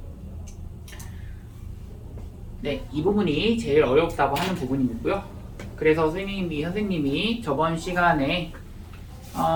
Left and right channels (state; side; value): identical; both; correlation 1.00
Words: 네, 이 부분이 제일 어렵다고 하는 부분이고요. 그래서 선생님이 저번 시간에